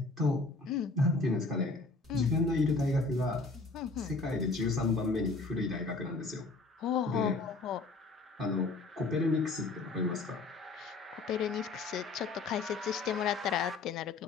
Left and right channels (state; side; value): quieter; right; 3.6 dB